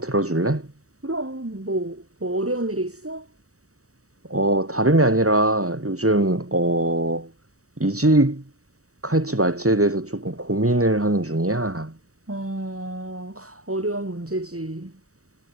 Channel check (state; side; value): late; left; 0.65 ms